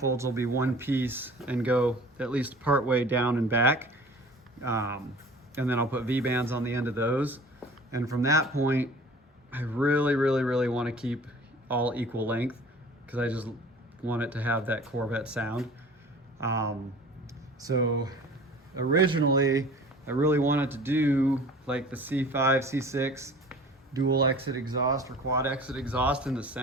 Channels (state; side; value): normal; both; correlation 0.45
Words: will be one piece and go at least part way down and back. And then I'll put V-bands on the end of those. And from that point, I really, really, really want to keep all equal length because I just want it to have that Corvette sound. So originally, I really wanted to do like the C5, C6 dual exit exhaust or quad exit exhaust in the